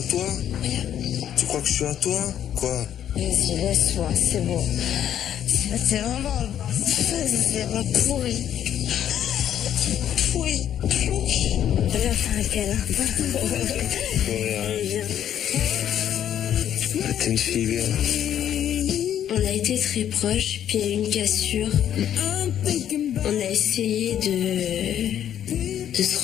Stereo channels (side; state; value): right; quieter; 10.3 dB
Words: toi? Tu crois que je suis à toi? Quoi? Vas-y, laisse-moi, c'est bon. C'est vraiment pourri. Pourri. Viens faire un câlin. T'es une fille bien. On a été très proches, puis il y a eu une cassure. On a essayé de se